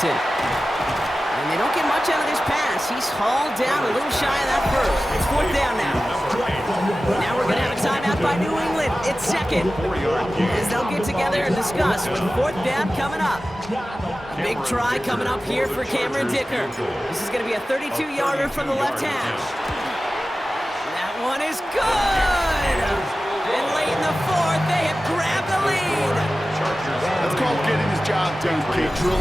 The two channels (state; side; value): normal; both; correlation 0.95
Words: And they don't get much out of this pass. He's hauled down a little shy of that first. It's fourth down now. Now we're going to have a timeout by New England. It's second. As they'll get together and discuss with fourth down coming up. A big try coming up here for Cameron Dicker. This is going to be a 32-yarder from the left hash. That one is good. And late in the fourth, they have grabbed the lead. That's called getting his job done, Kate,